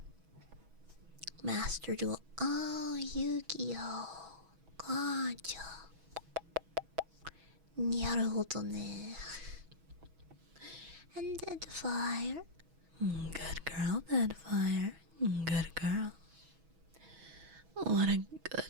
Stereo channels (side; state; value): left; late; 6.1 ms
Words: Master Duel. Oh, Yu-Gi-Oh! Gotcha. Naruhodo ne. And Deadfire. Good girl, Deadfire. Good girl. What a